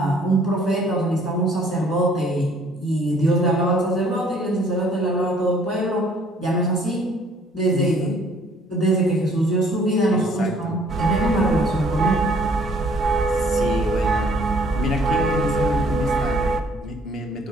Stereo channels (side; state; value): both; normal; correlation 0.59